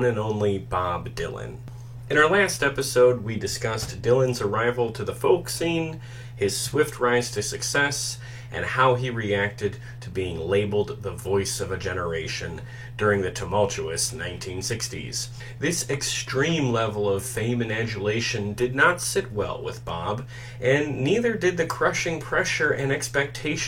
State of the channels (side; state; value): both; identical; correlation 1.00